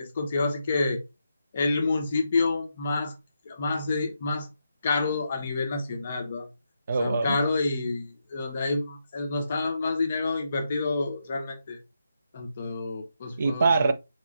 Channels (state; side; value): inverted; both; correlation -0.82